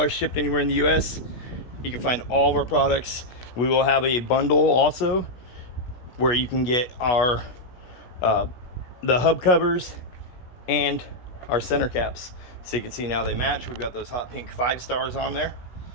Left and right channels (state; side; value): late; right; 16 ms